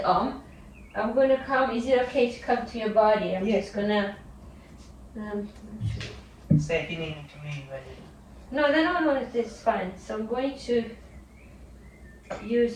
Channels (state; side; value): identical; both; correlation 1.00